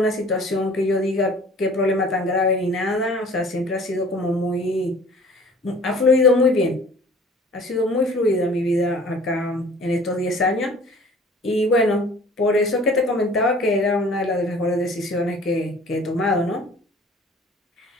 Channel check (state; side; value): normal; both; correlation 0.49